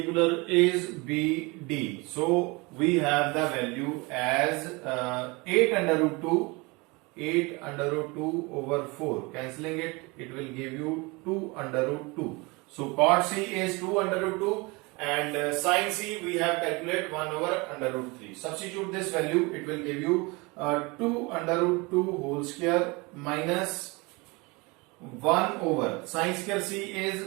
is BD. So we have the value as 8 under root 2 8 under root 2 over 4. Cancelling it, it will give you 2 under root 2. So cot C is 2 under root 2 and sin C we have calculated 1 over under root 3. Substitute this value, it will give you 2 under root 2 whole square minus 1 over sin square C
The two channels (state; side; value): quieter; left; 26.1 dB